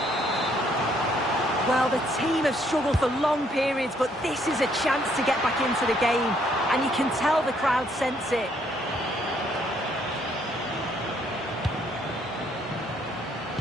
Well, the team have struggled for long periods, but this is a chance to get back into the game. And you can tell the crowd sense it.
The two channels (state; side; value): normal; both; correlation 0.68